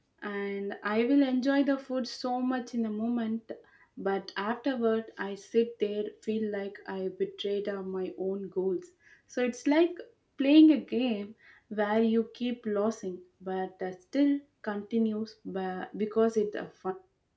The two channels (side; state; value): both; identical; correlation 1.00